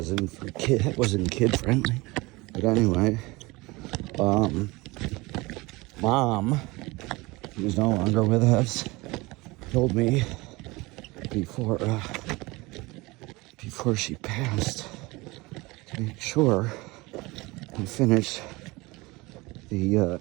kid friendly. But anyway, Mom, who's no longer with us, told me before she passed to make sure I finished the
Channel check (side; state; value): left; quieter; 22.9 dB